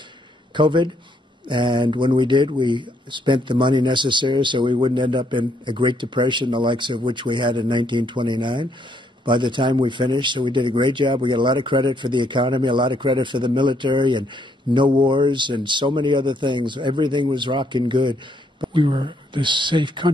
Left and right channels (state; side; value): normal; both; correlation 0.71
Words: COVID, and when we did, we spent the money necessary so we wouldn't end up in a Great Depression, the likes of which we had in 1929. By the time we finished, so we did a great job. We got a lot of credit for the economy, a lot of credit for the military, and no wars, and so many other things. Everything was rocking good. We were this safe